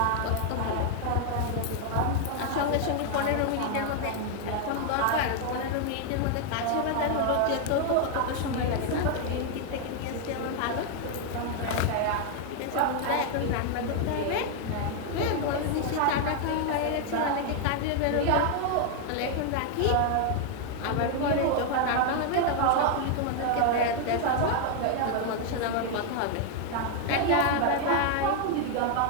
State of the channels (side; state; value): both; different; correlation 0.00